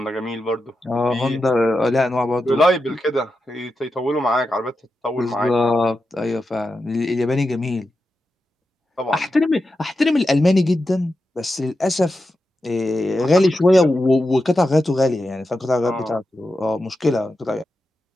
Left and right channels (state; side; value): normal; both; correlation 0.89